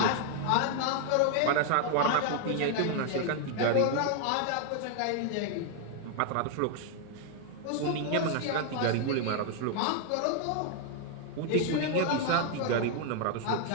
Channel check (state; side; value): different; both; correlation 0.00